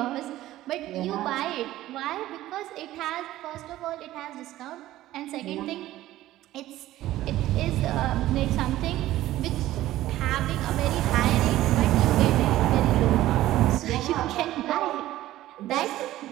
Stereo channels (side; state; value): left; quieter; 15.0 dB